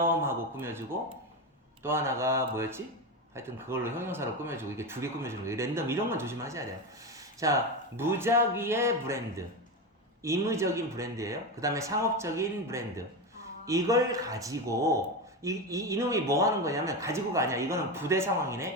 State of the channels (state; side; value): normal; both; correlation 0.17